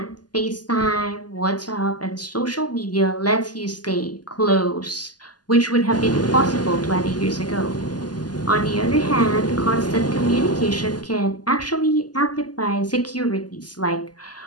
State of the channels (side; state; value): right; late; 0.70 ms